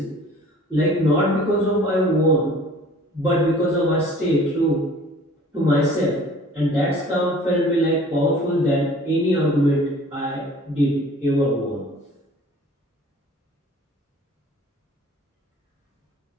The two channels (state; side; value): normal; both; correlation 0.49